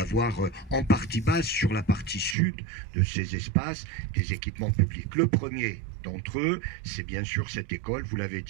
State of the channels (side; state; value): left; drops out; at 2.4 s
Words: en partie base sur la partie sud de ces espaces des équipements publics. Le premier d'entre eux, c'est bien sûr cette école, vous l'avez